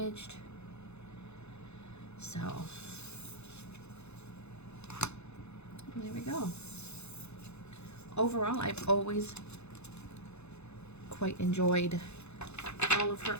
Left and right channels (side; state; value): right; late; 0.81 ms